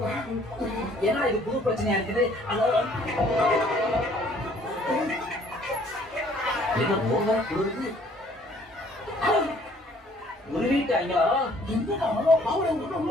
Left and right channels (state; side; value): normal; both; correlation 0.59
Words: ஏன்னா இது புது பிரச்சனையா இருக்குது. குளிருது. உருவிட்டாங்களா?